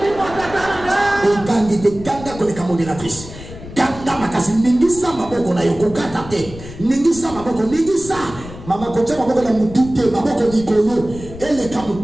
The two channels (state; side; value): noise; left; rumble, 14 dB below the sound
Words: Ogangi de ganga koleka modératrice. Ganga makasi ningisa maboko na yokokata te. Ningisa maboko, ningisa. Mama kocha maboko na mutu te, maboko nikolo. Ele